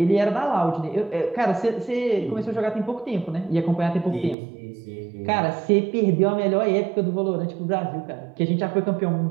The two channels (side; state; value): left; drops out; at 4.4 s